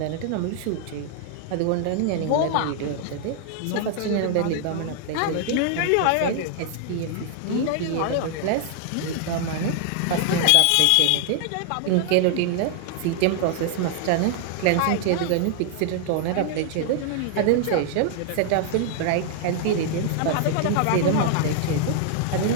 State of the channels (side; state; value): both; different; correlation 0.00